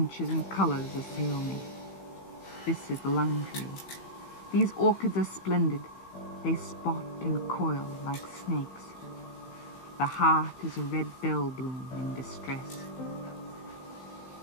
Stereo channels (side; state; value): right; late; 15 ms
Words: and colors assail me. This is the lung tree. These orchids are splendid. They spot and coil like snakes. The heart is a red bell bloom in distress.